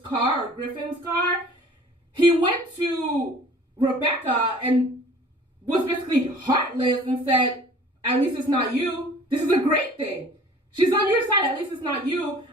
he went to Rebecca and was basically heartless and said, at least it's not you. This is a great thing. She's on your side. At least it's not you.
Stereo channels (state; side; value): normal; both; correlation 0.49